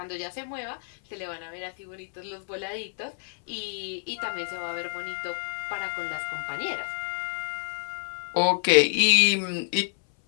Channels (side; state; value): right; silent; 59 dB below the other